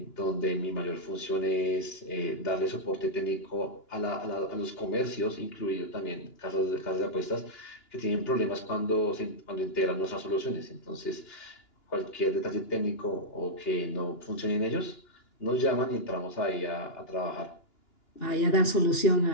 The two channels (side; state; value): right; late; 2.9 ms